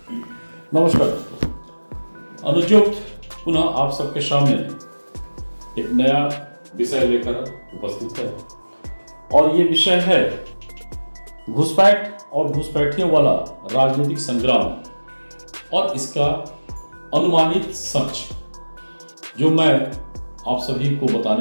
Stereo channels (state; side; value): inverted; both; correlation -1.00